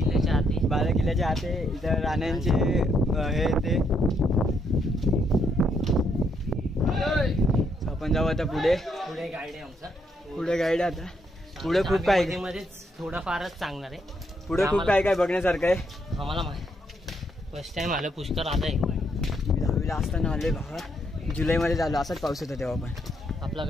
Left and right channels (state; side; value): normal; both; correlation 0.75